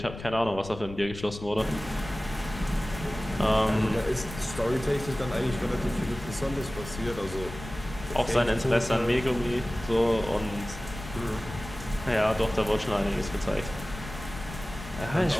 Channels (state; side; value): noise; left; rumble, 12 dB below the sound